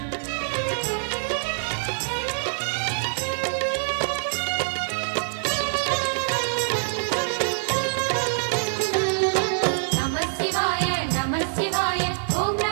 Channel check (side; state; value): left; silent; digital silence